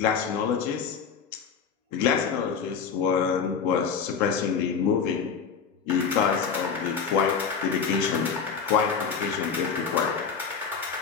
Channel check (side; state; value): right; quieter; 6.2 dB